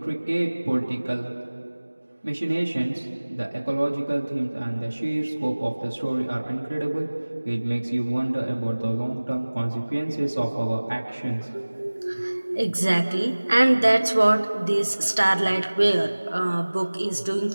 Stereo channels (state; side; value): inverted; both; correlation -1.00